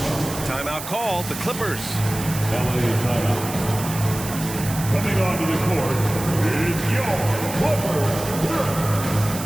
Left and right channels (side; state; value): right; noise; hiss, 9 dB below the sound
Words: Timeout called, the Clippers. LA timeout. Coming onto the court is your Clippers.